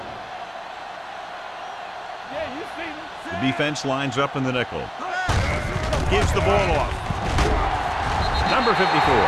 Yeah, you see me. The defense lines up in the nickel. Gives the ball off. Number 54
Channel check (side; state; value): both; identical; correlation 1.00